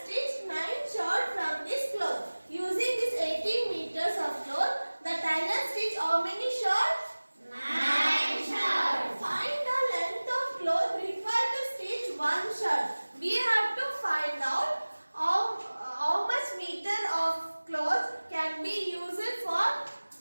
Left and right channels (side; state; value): both; inverted; correlation -1.00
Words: stitch 9 shirts from this cloth. Using this 18 meters of cloth, the tailor stitch how many shirts? 9 shirts. Find the length of cloth required to stitch one shirt. We have to find out how much meter of cloth can be used for